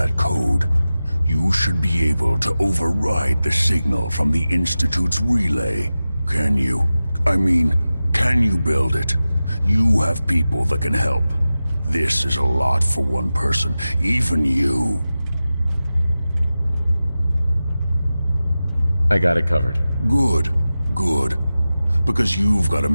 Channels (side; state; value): both; inverted; correlation -0.95